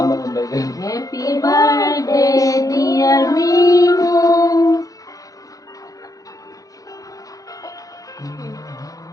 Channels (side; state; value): right; late; 0.17 ms